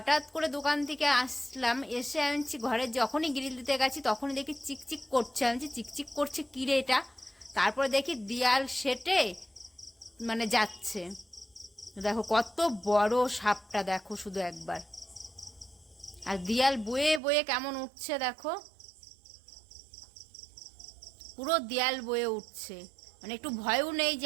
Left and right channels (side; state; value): left; drops out; at 17.2 s